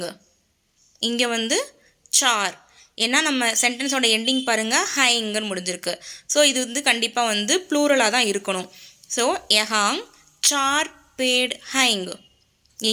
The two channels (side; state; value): both; identical; correlation 1.00